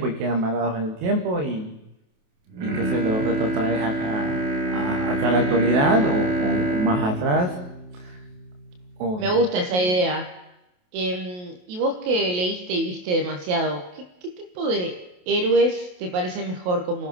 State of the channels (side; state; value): left; late; 28 ms